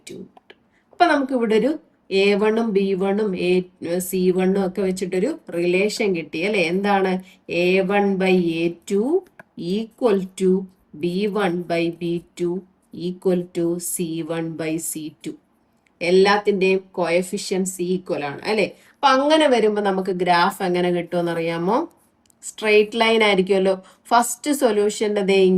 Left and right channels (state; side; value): identical; both; correlation 1.00